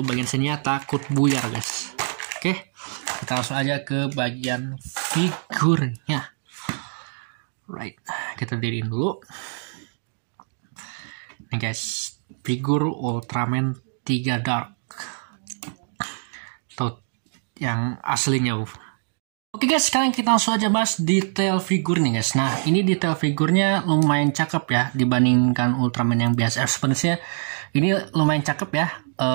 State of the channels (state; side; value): silent; left; 63 dB below the other